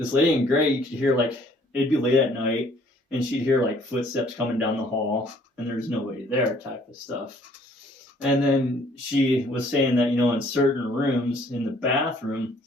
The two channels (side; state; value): both; normal; correlation 0.60